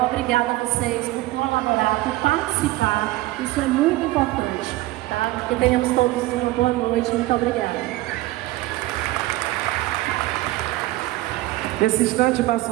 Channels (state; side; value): quieter; left; 18.3 dB